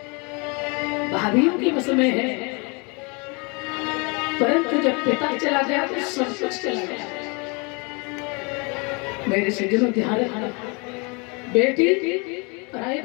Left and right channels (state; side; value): quieter; right; 30.9 dB